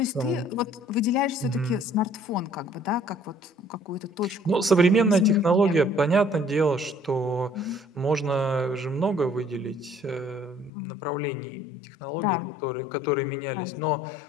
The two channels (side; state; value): right; drops out; at 10.7 s